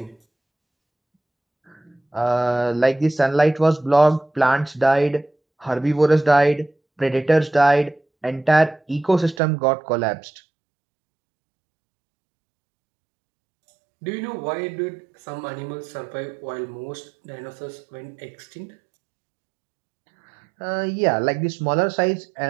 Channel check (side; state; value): left; drops out; at 9.4 s